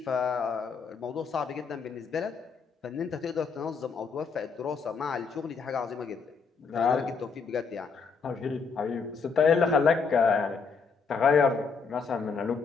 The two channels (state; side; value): quieter; right; 5.3 dB